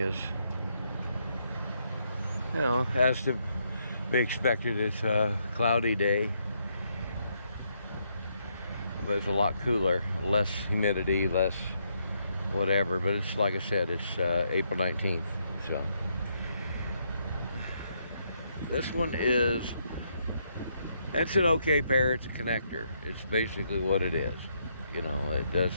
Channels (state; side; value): inverted; both; correlation -0.76